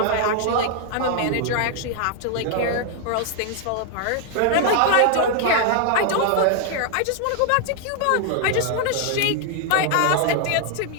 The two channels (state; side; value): different; both; correlation 0.00